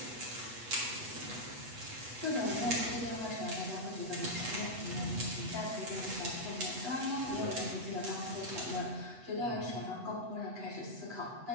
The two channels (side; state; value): left; late; 8.1 ms